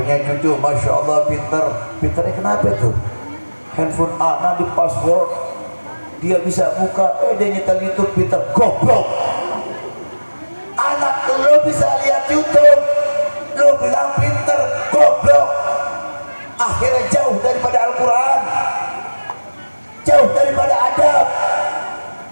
cucu, masya Allah pinter. Pinternya kenapa tuh? Handphone anak di password, dia bisa buka, dia nyetel YouTube, pinter. Goblok. Anak lo bisa lihat YouTube, lo bilang pinter, goblok. Akhirnya jauh daripada Al-Quran, jauh daripada adab.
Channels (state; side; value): inverted; both; correlation -1.00